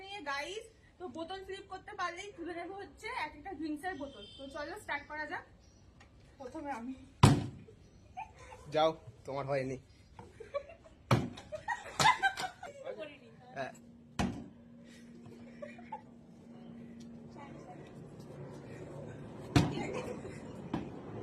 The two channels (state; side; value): identical; both; correlation 1.00